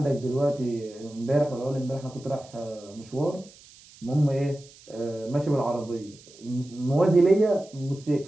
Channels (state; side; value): noise; right; hiss, 23 dB below the sound